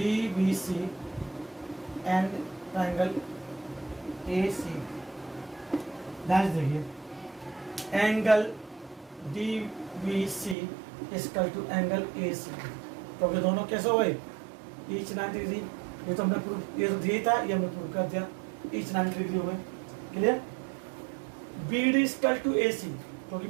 and triangle ACB, ध्यान से देखिए, angle DBC equal to angle ACB. क्योंकि दोनों कैसे हो गए? Each 90 degree. ये तो हमने प्रूव, ये तो दिया था, ये हमने प्रूव कर दिया, ईच 90 डिग्री हो गए। Clear? B D equal to A C, क्योंकि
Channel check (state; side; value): drops out; left; at 10.6 s